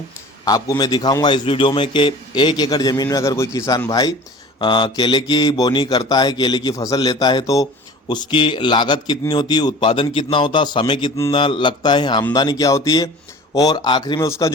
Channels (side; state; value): both; normal; correlation 0.42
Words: आपको मैं दिखाऊंगा इस वीडियो में कि 1 एकड़ ज़मीन में अगर कोई किसान भाई केले की बोनी करता है, केले की फसल लेता है, तो उसकी लागत कितनी होती है, उत्पादन कितना होता है, समय कितना लगता है, आमदनी क्या होती है, और आखिरी में उसका